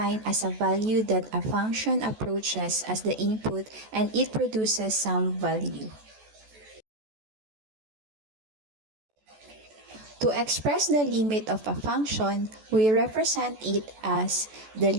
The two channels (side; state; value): left; late; 14 ms